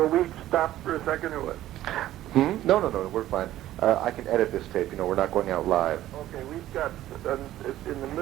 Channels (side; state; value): left; quieter; 13.9 dB